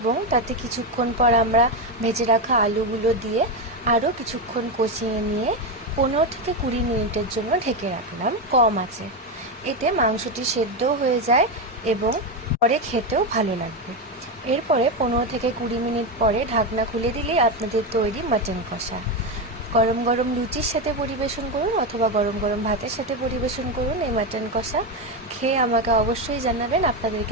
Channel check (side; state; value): both; normal; correlation 0.11